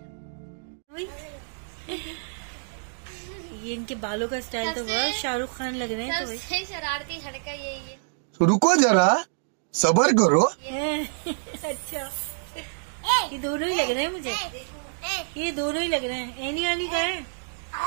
ये इनके बालों का स्टाइल तो बहुत शाहरुख खान लग रहे हैं। तो भाई शरारती लड़का यही है। रुको जरा, सबर करो। अच्छा ये दोनों ही लग रहे हैं मुझे, ये दोनों ही लग रहे हैं। एनी आनी का है।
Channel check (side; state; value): left; silent; digital silence